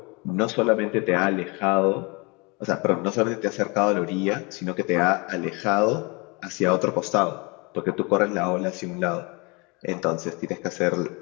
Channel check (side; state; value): right; quieter; 28.9 dB